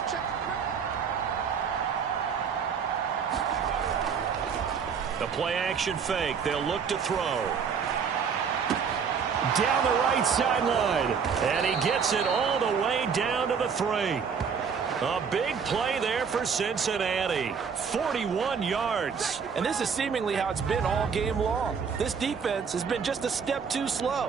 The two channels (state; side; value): quieter; left; 6.4 dB